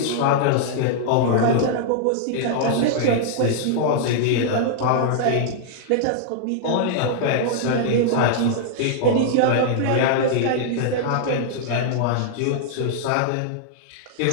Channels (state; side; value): different; both; correlation -0.01